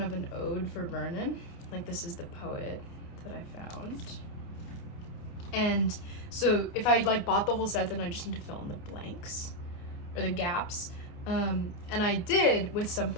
an ode for Vernon. Like, this is the poet that I found. And so if I like bought the whole set, then I just need to fill in the blanks or the gaps. And I did with some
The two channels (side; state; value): right; late; 28 ms